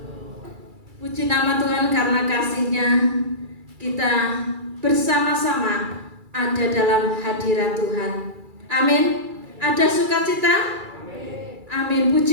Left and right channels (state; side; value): late; left; 2.3 ms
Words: Puji nama Tuhan karena kasih-Nya kita bersama-sama ada dalam hadirat Tuhan. Amin. Ada sukacita? Amin.